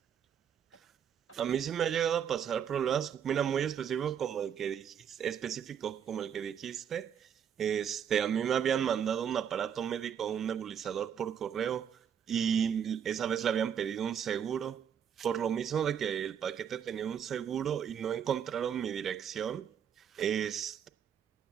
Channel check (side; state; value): left; quieter; 8.5 dB